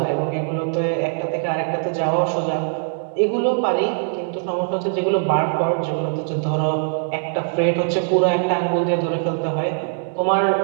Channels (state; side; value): silent; left; 65 dB below the other